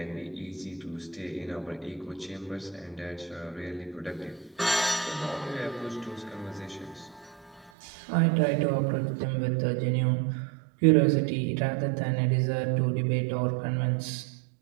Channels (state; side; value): drops out; left; at 7.7 s